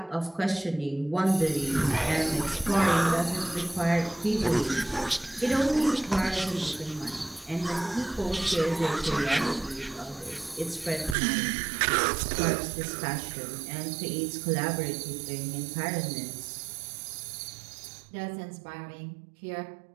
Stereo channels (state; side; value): drops out; left; at 11.2 s